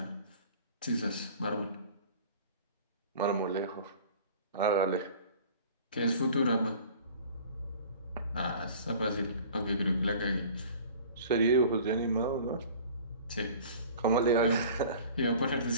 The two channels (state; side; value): inverted; both; correlation -0.45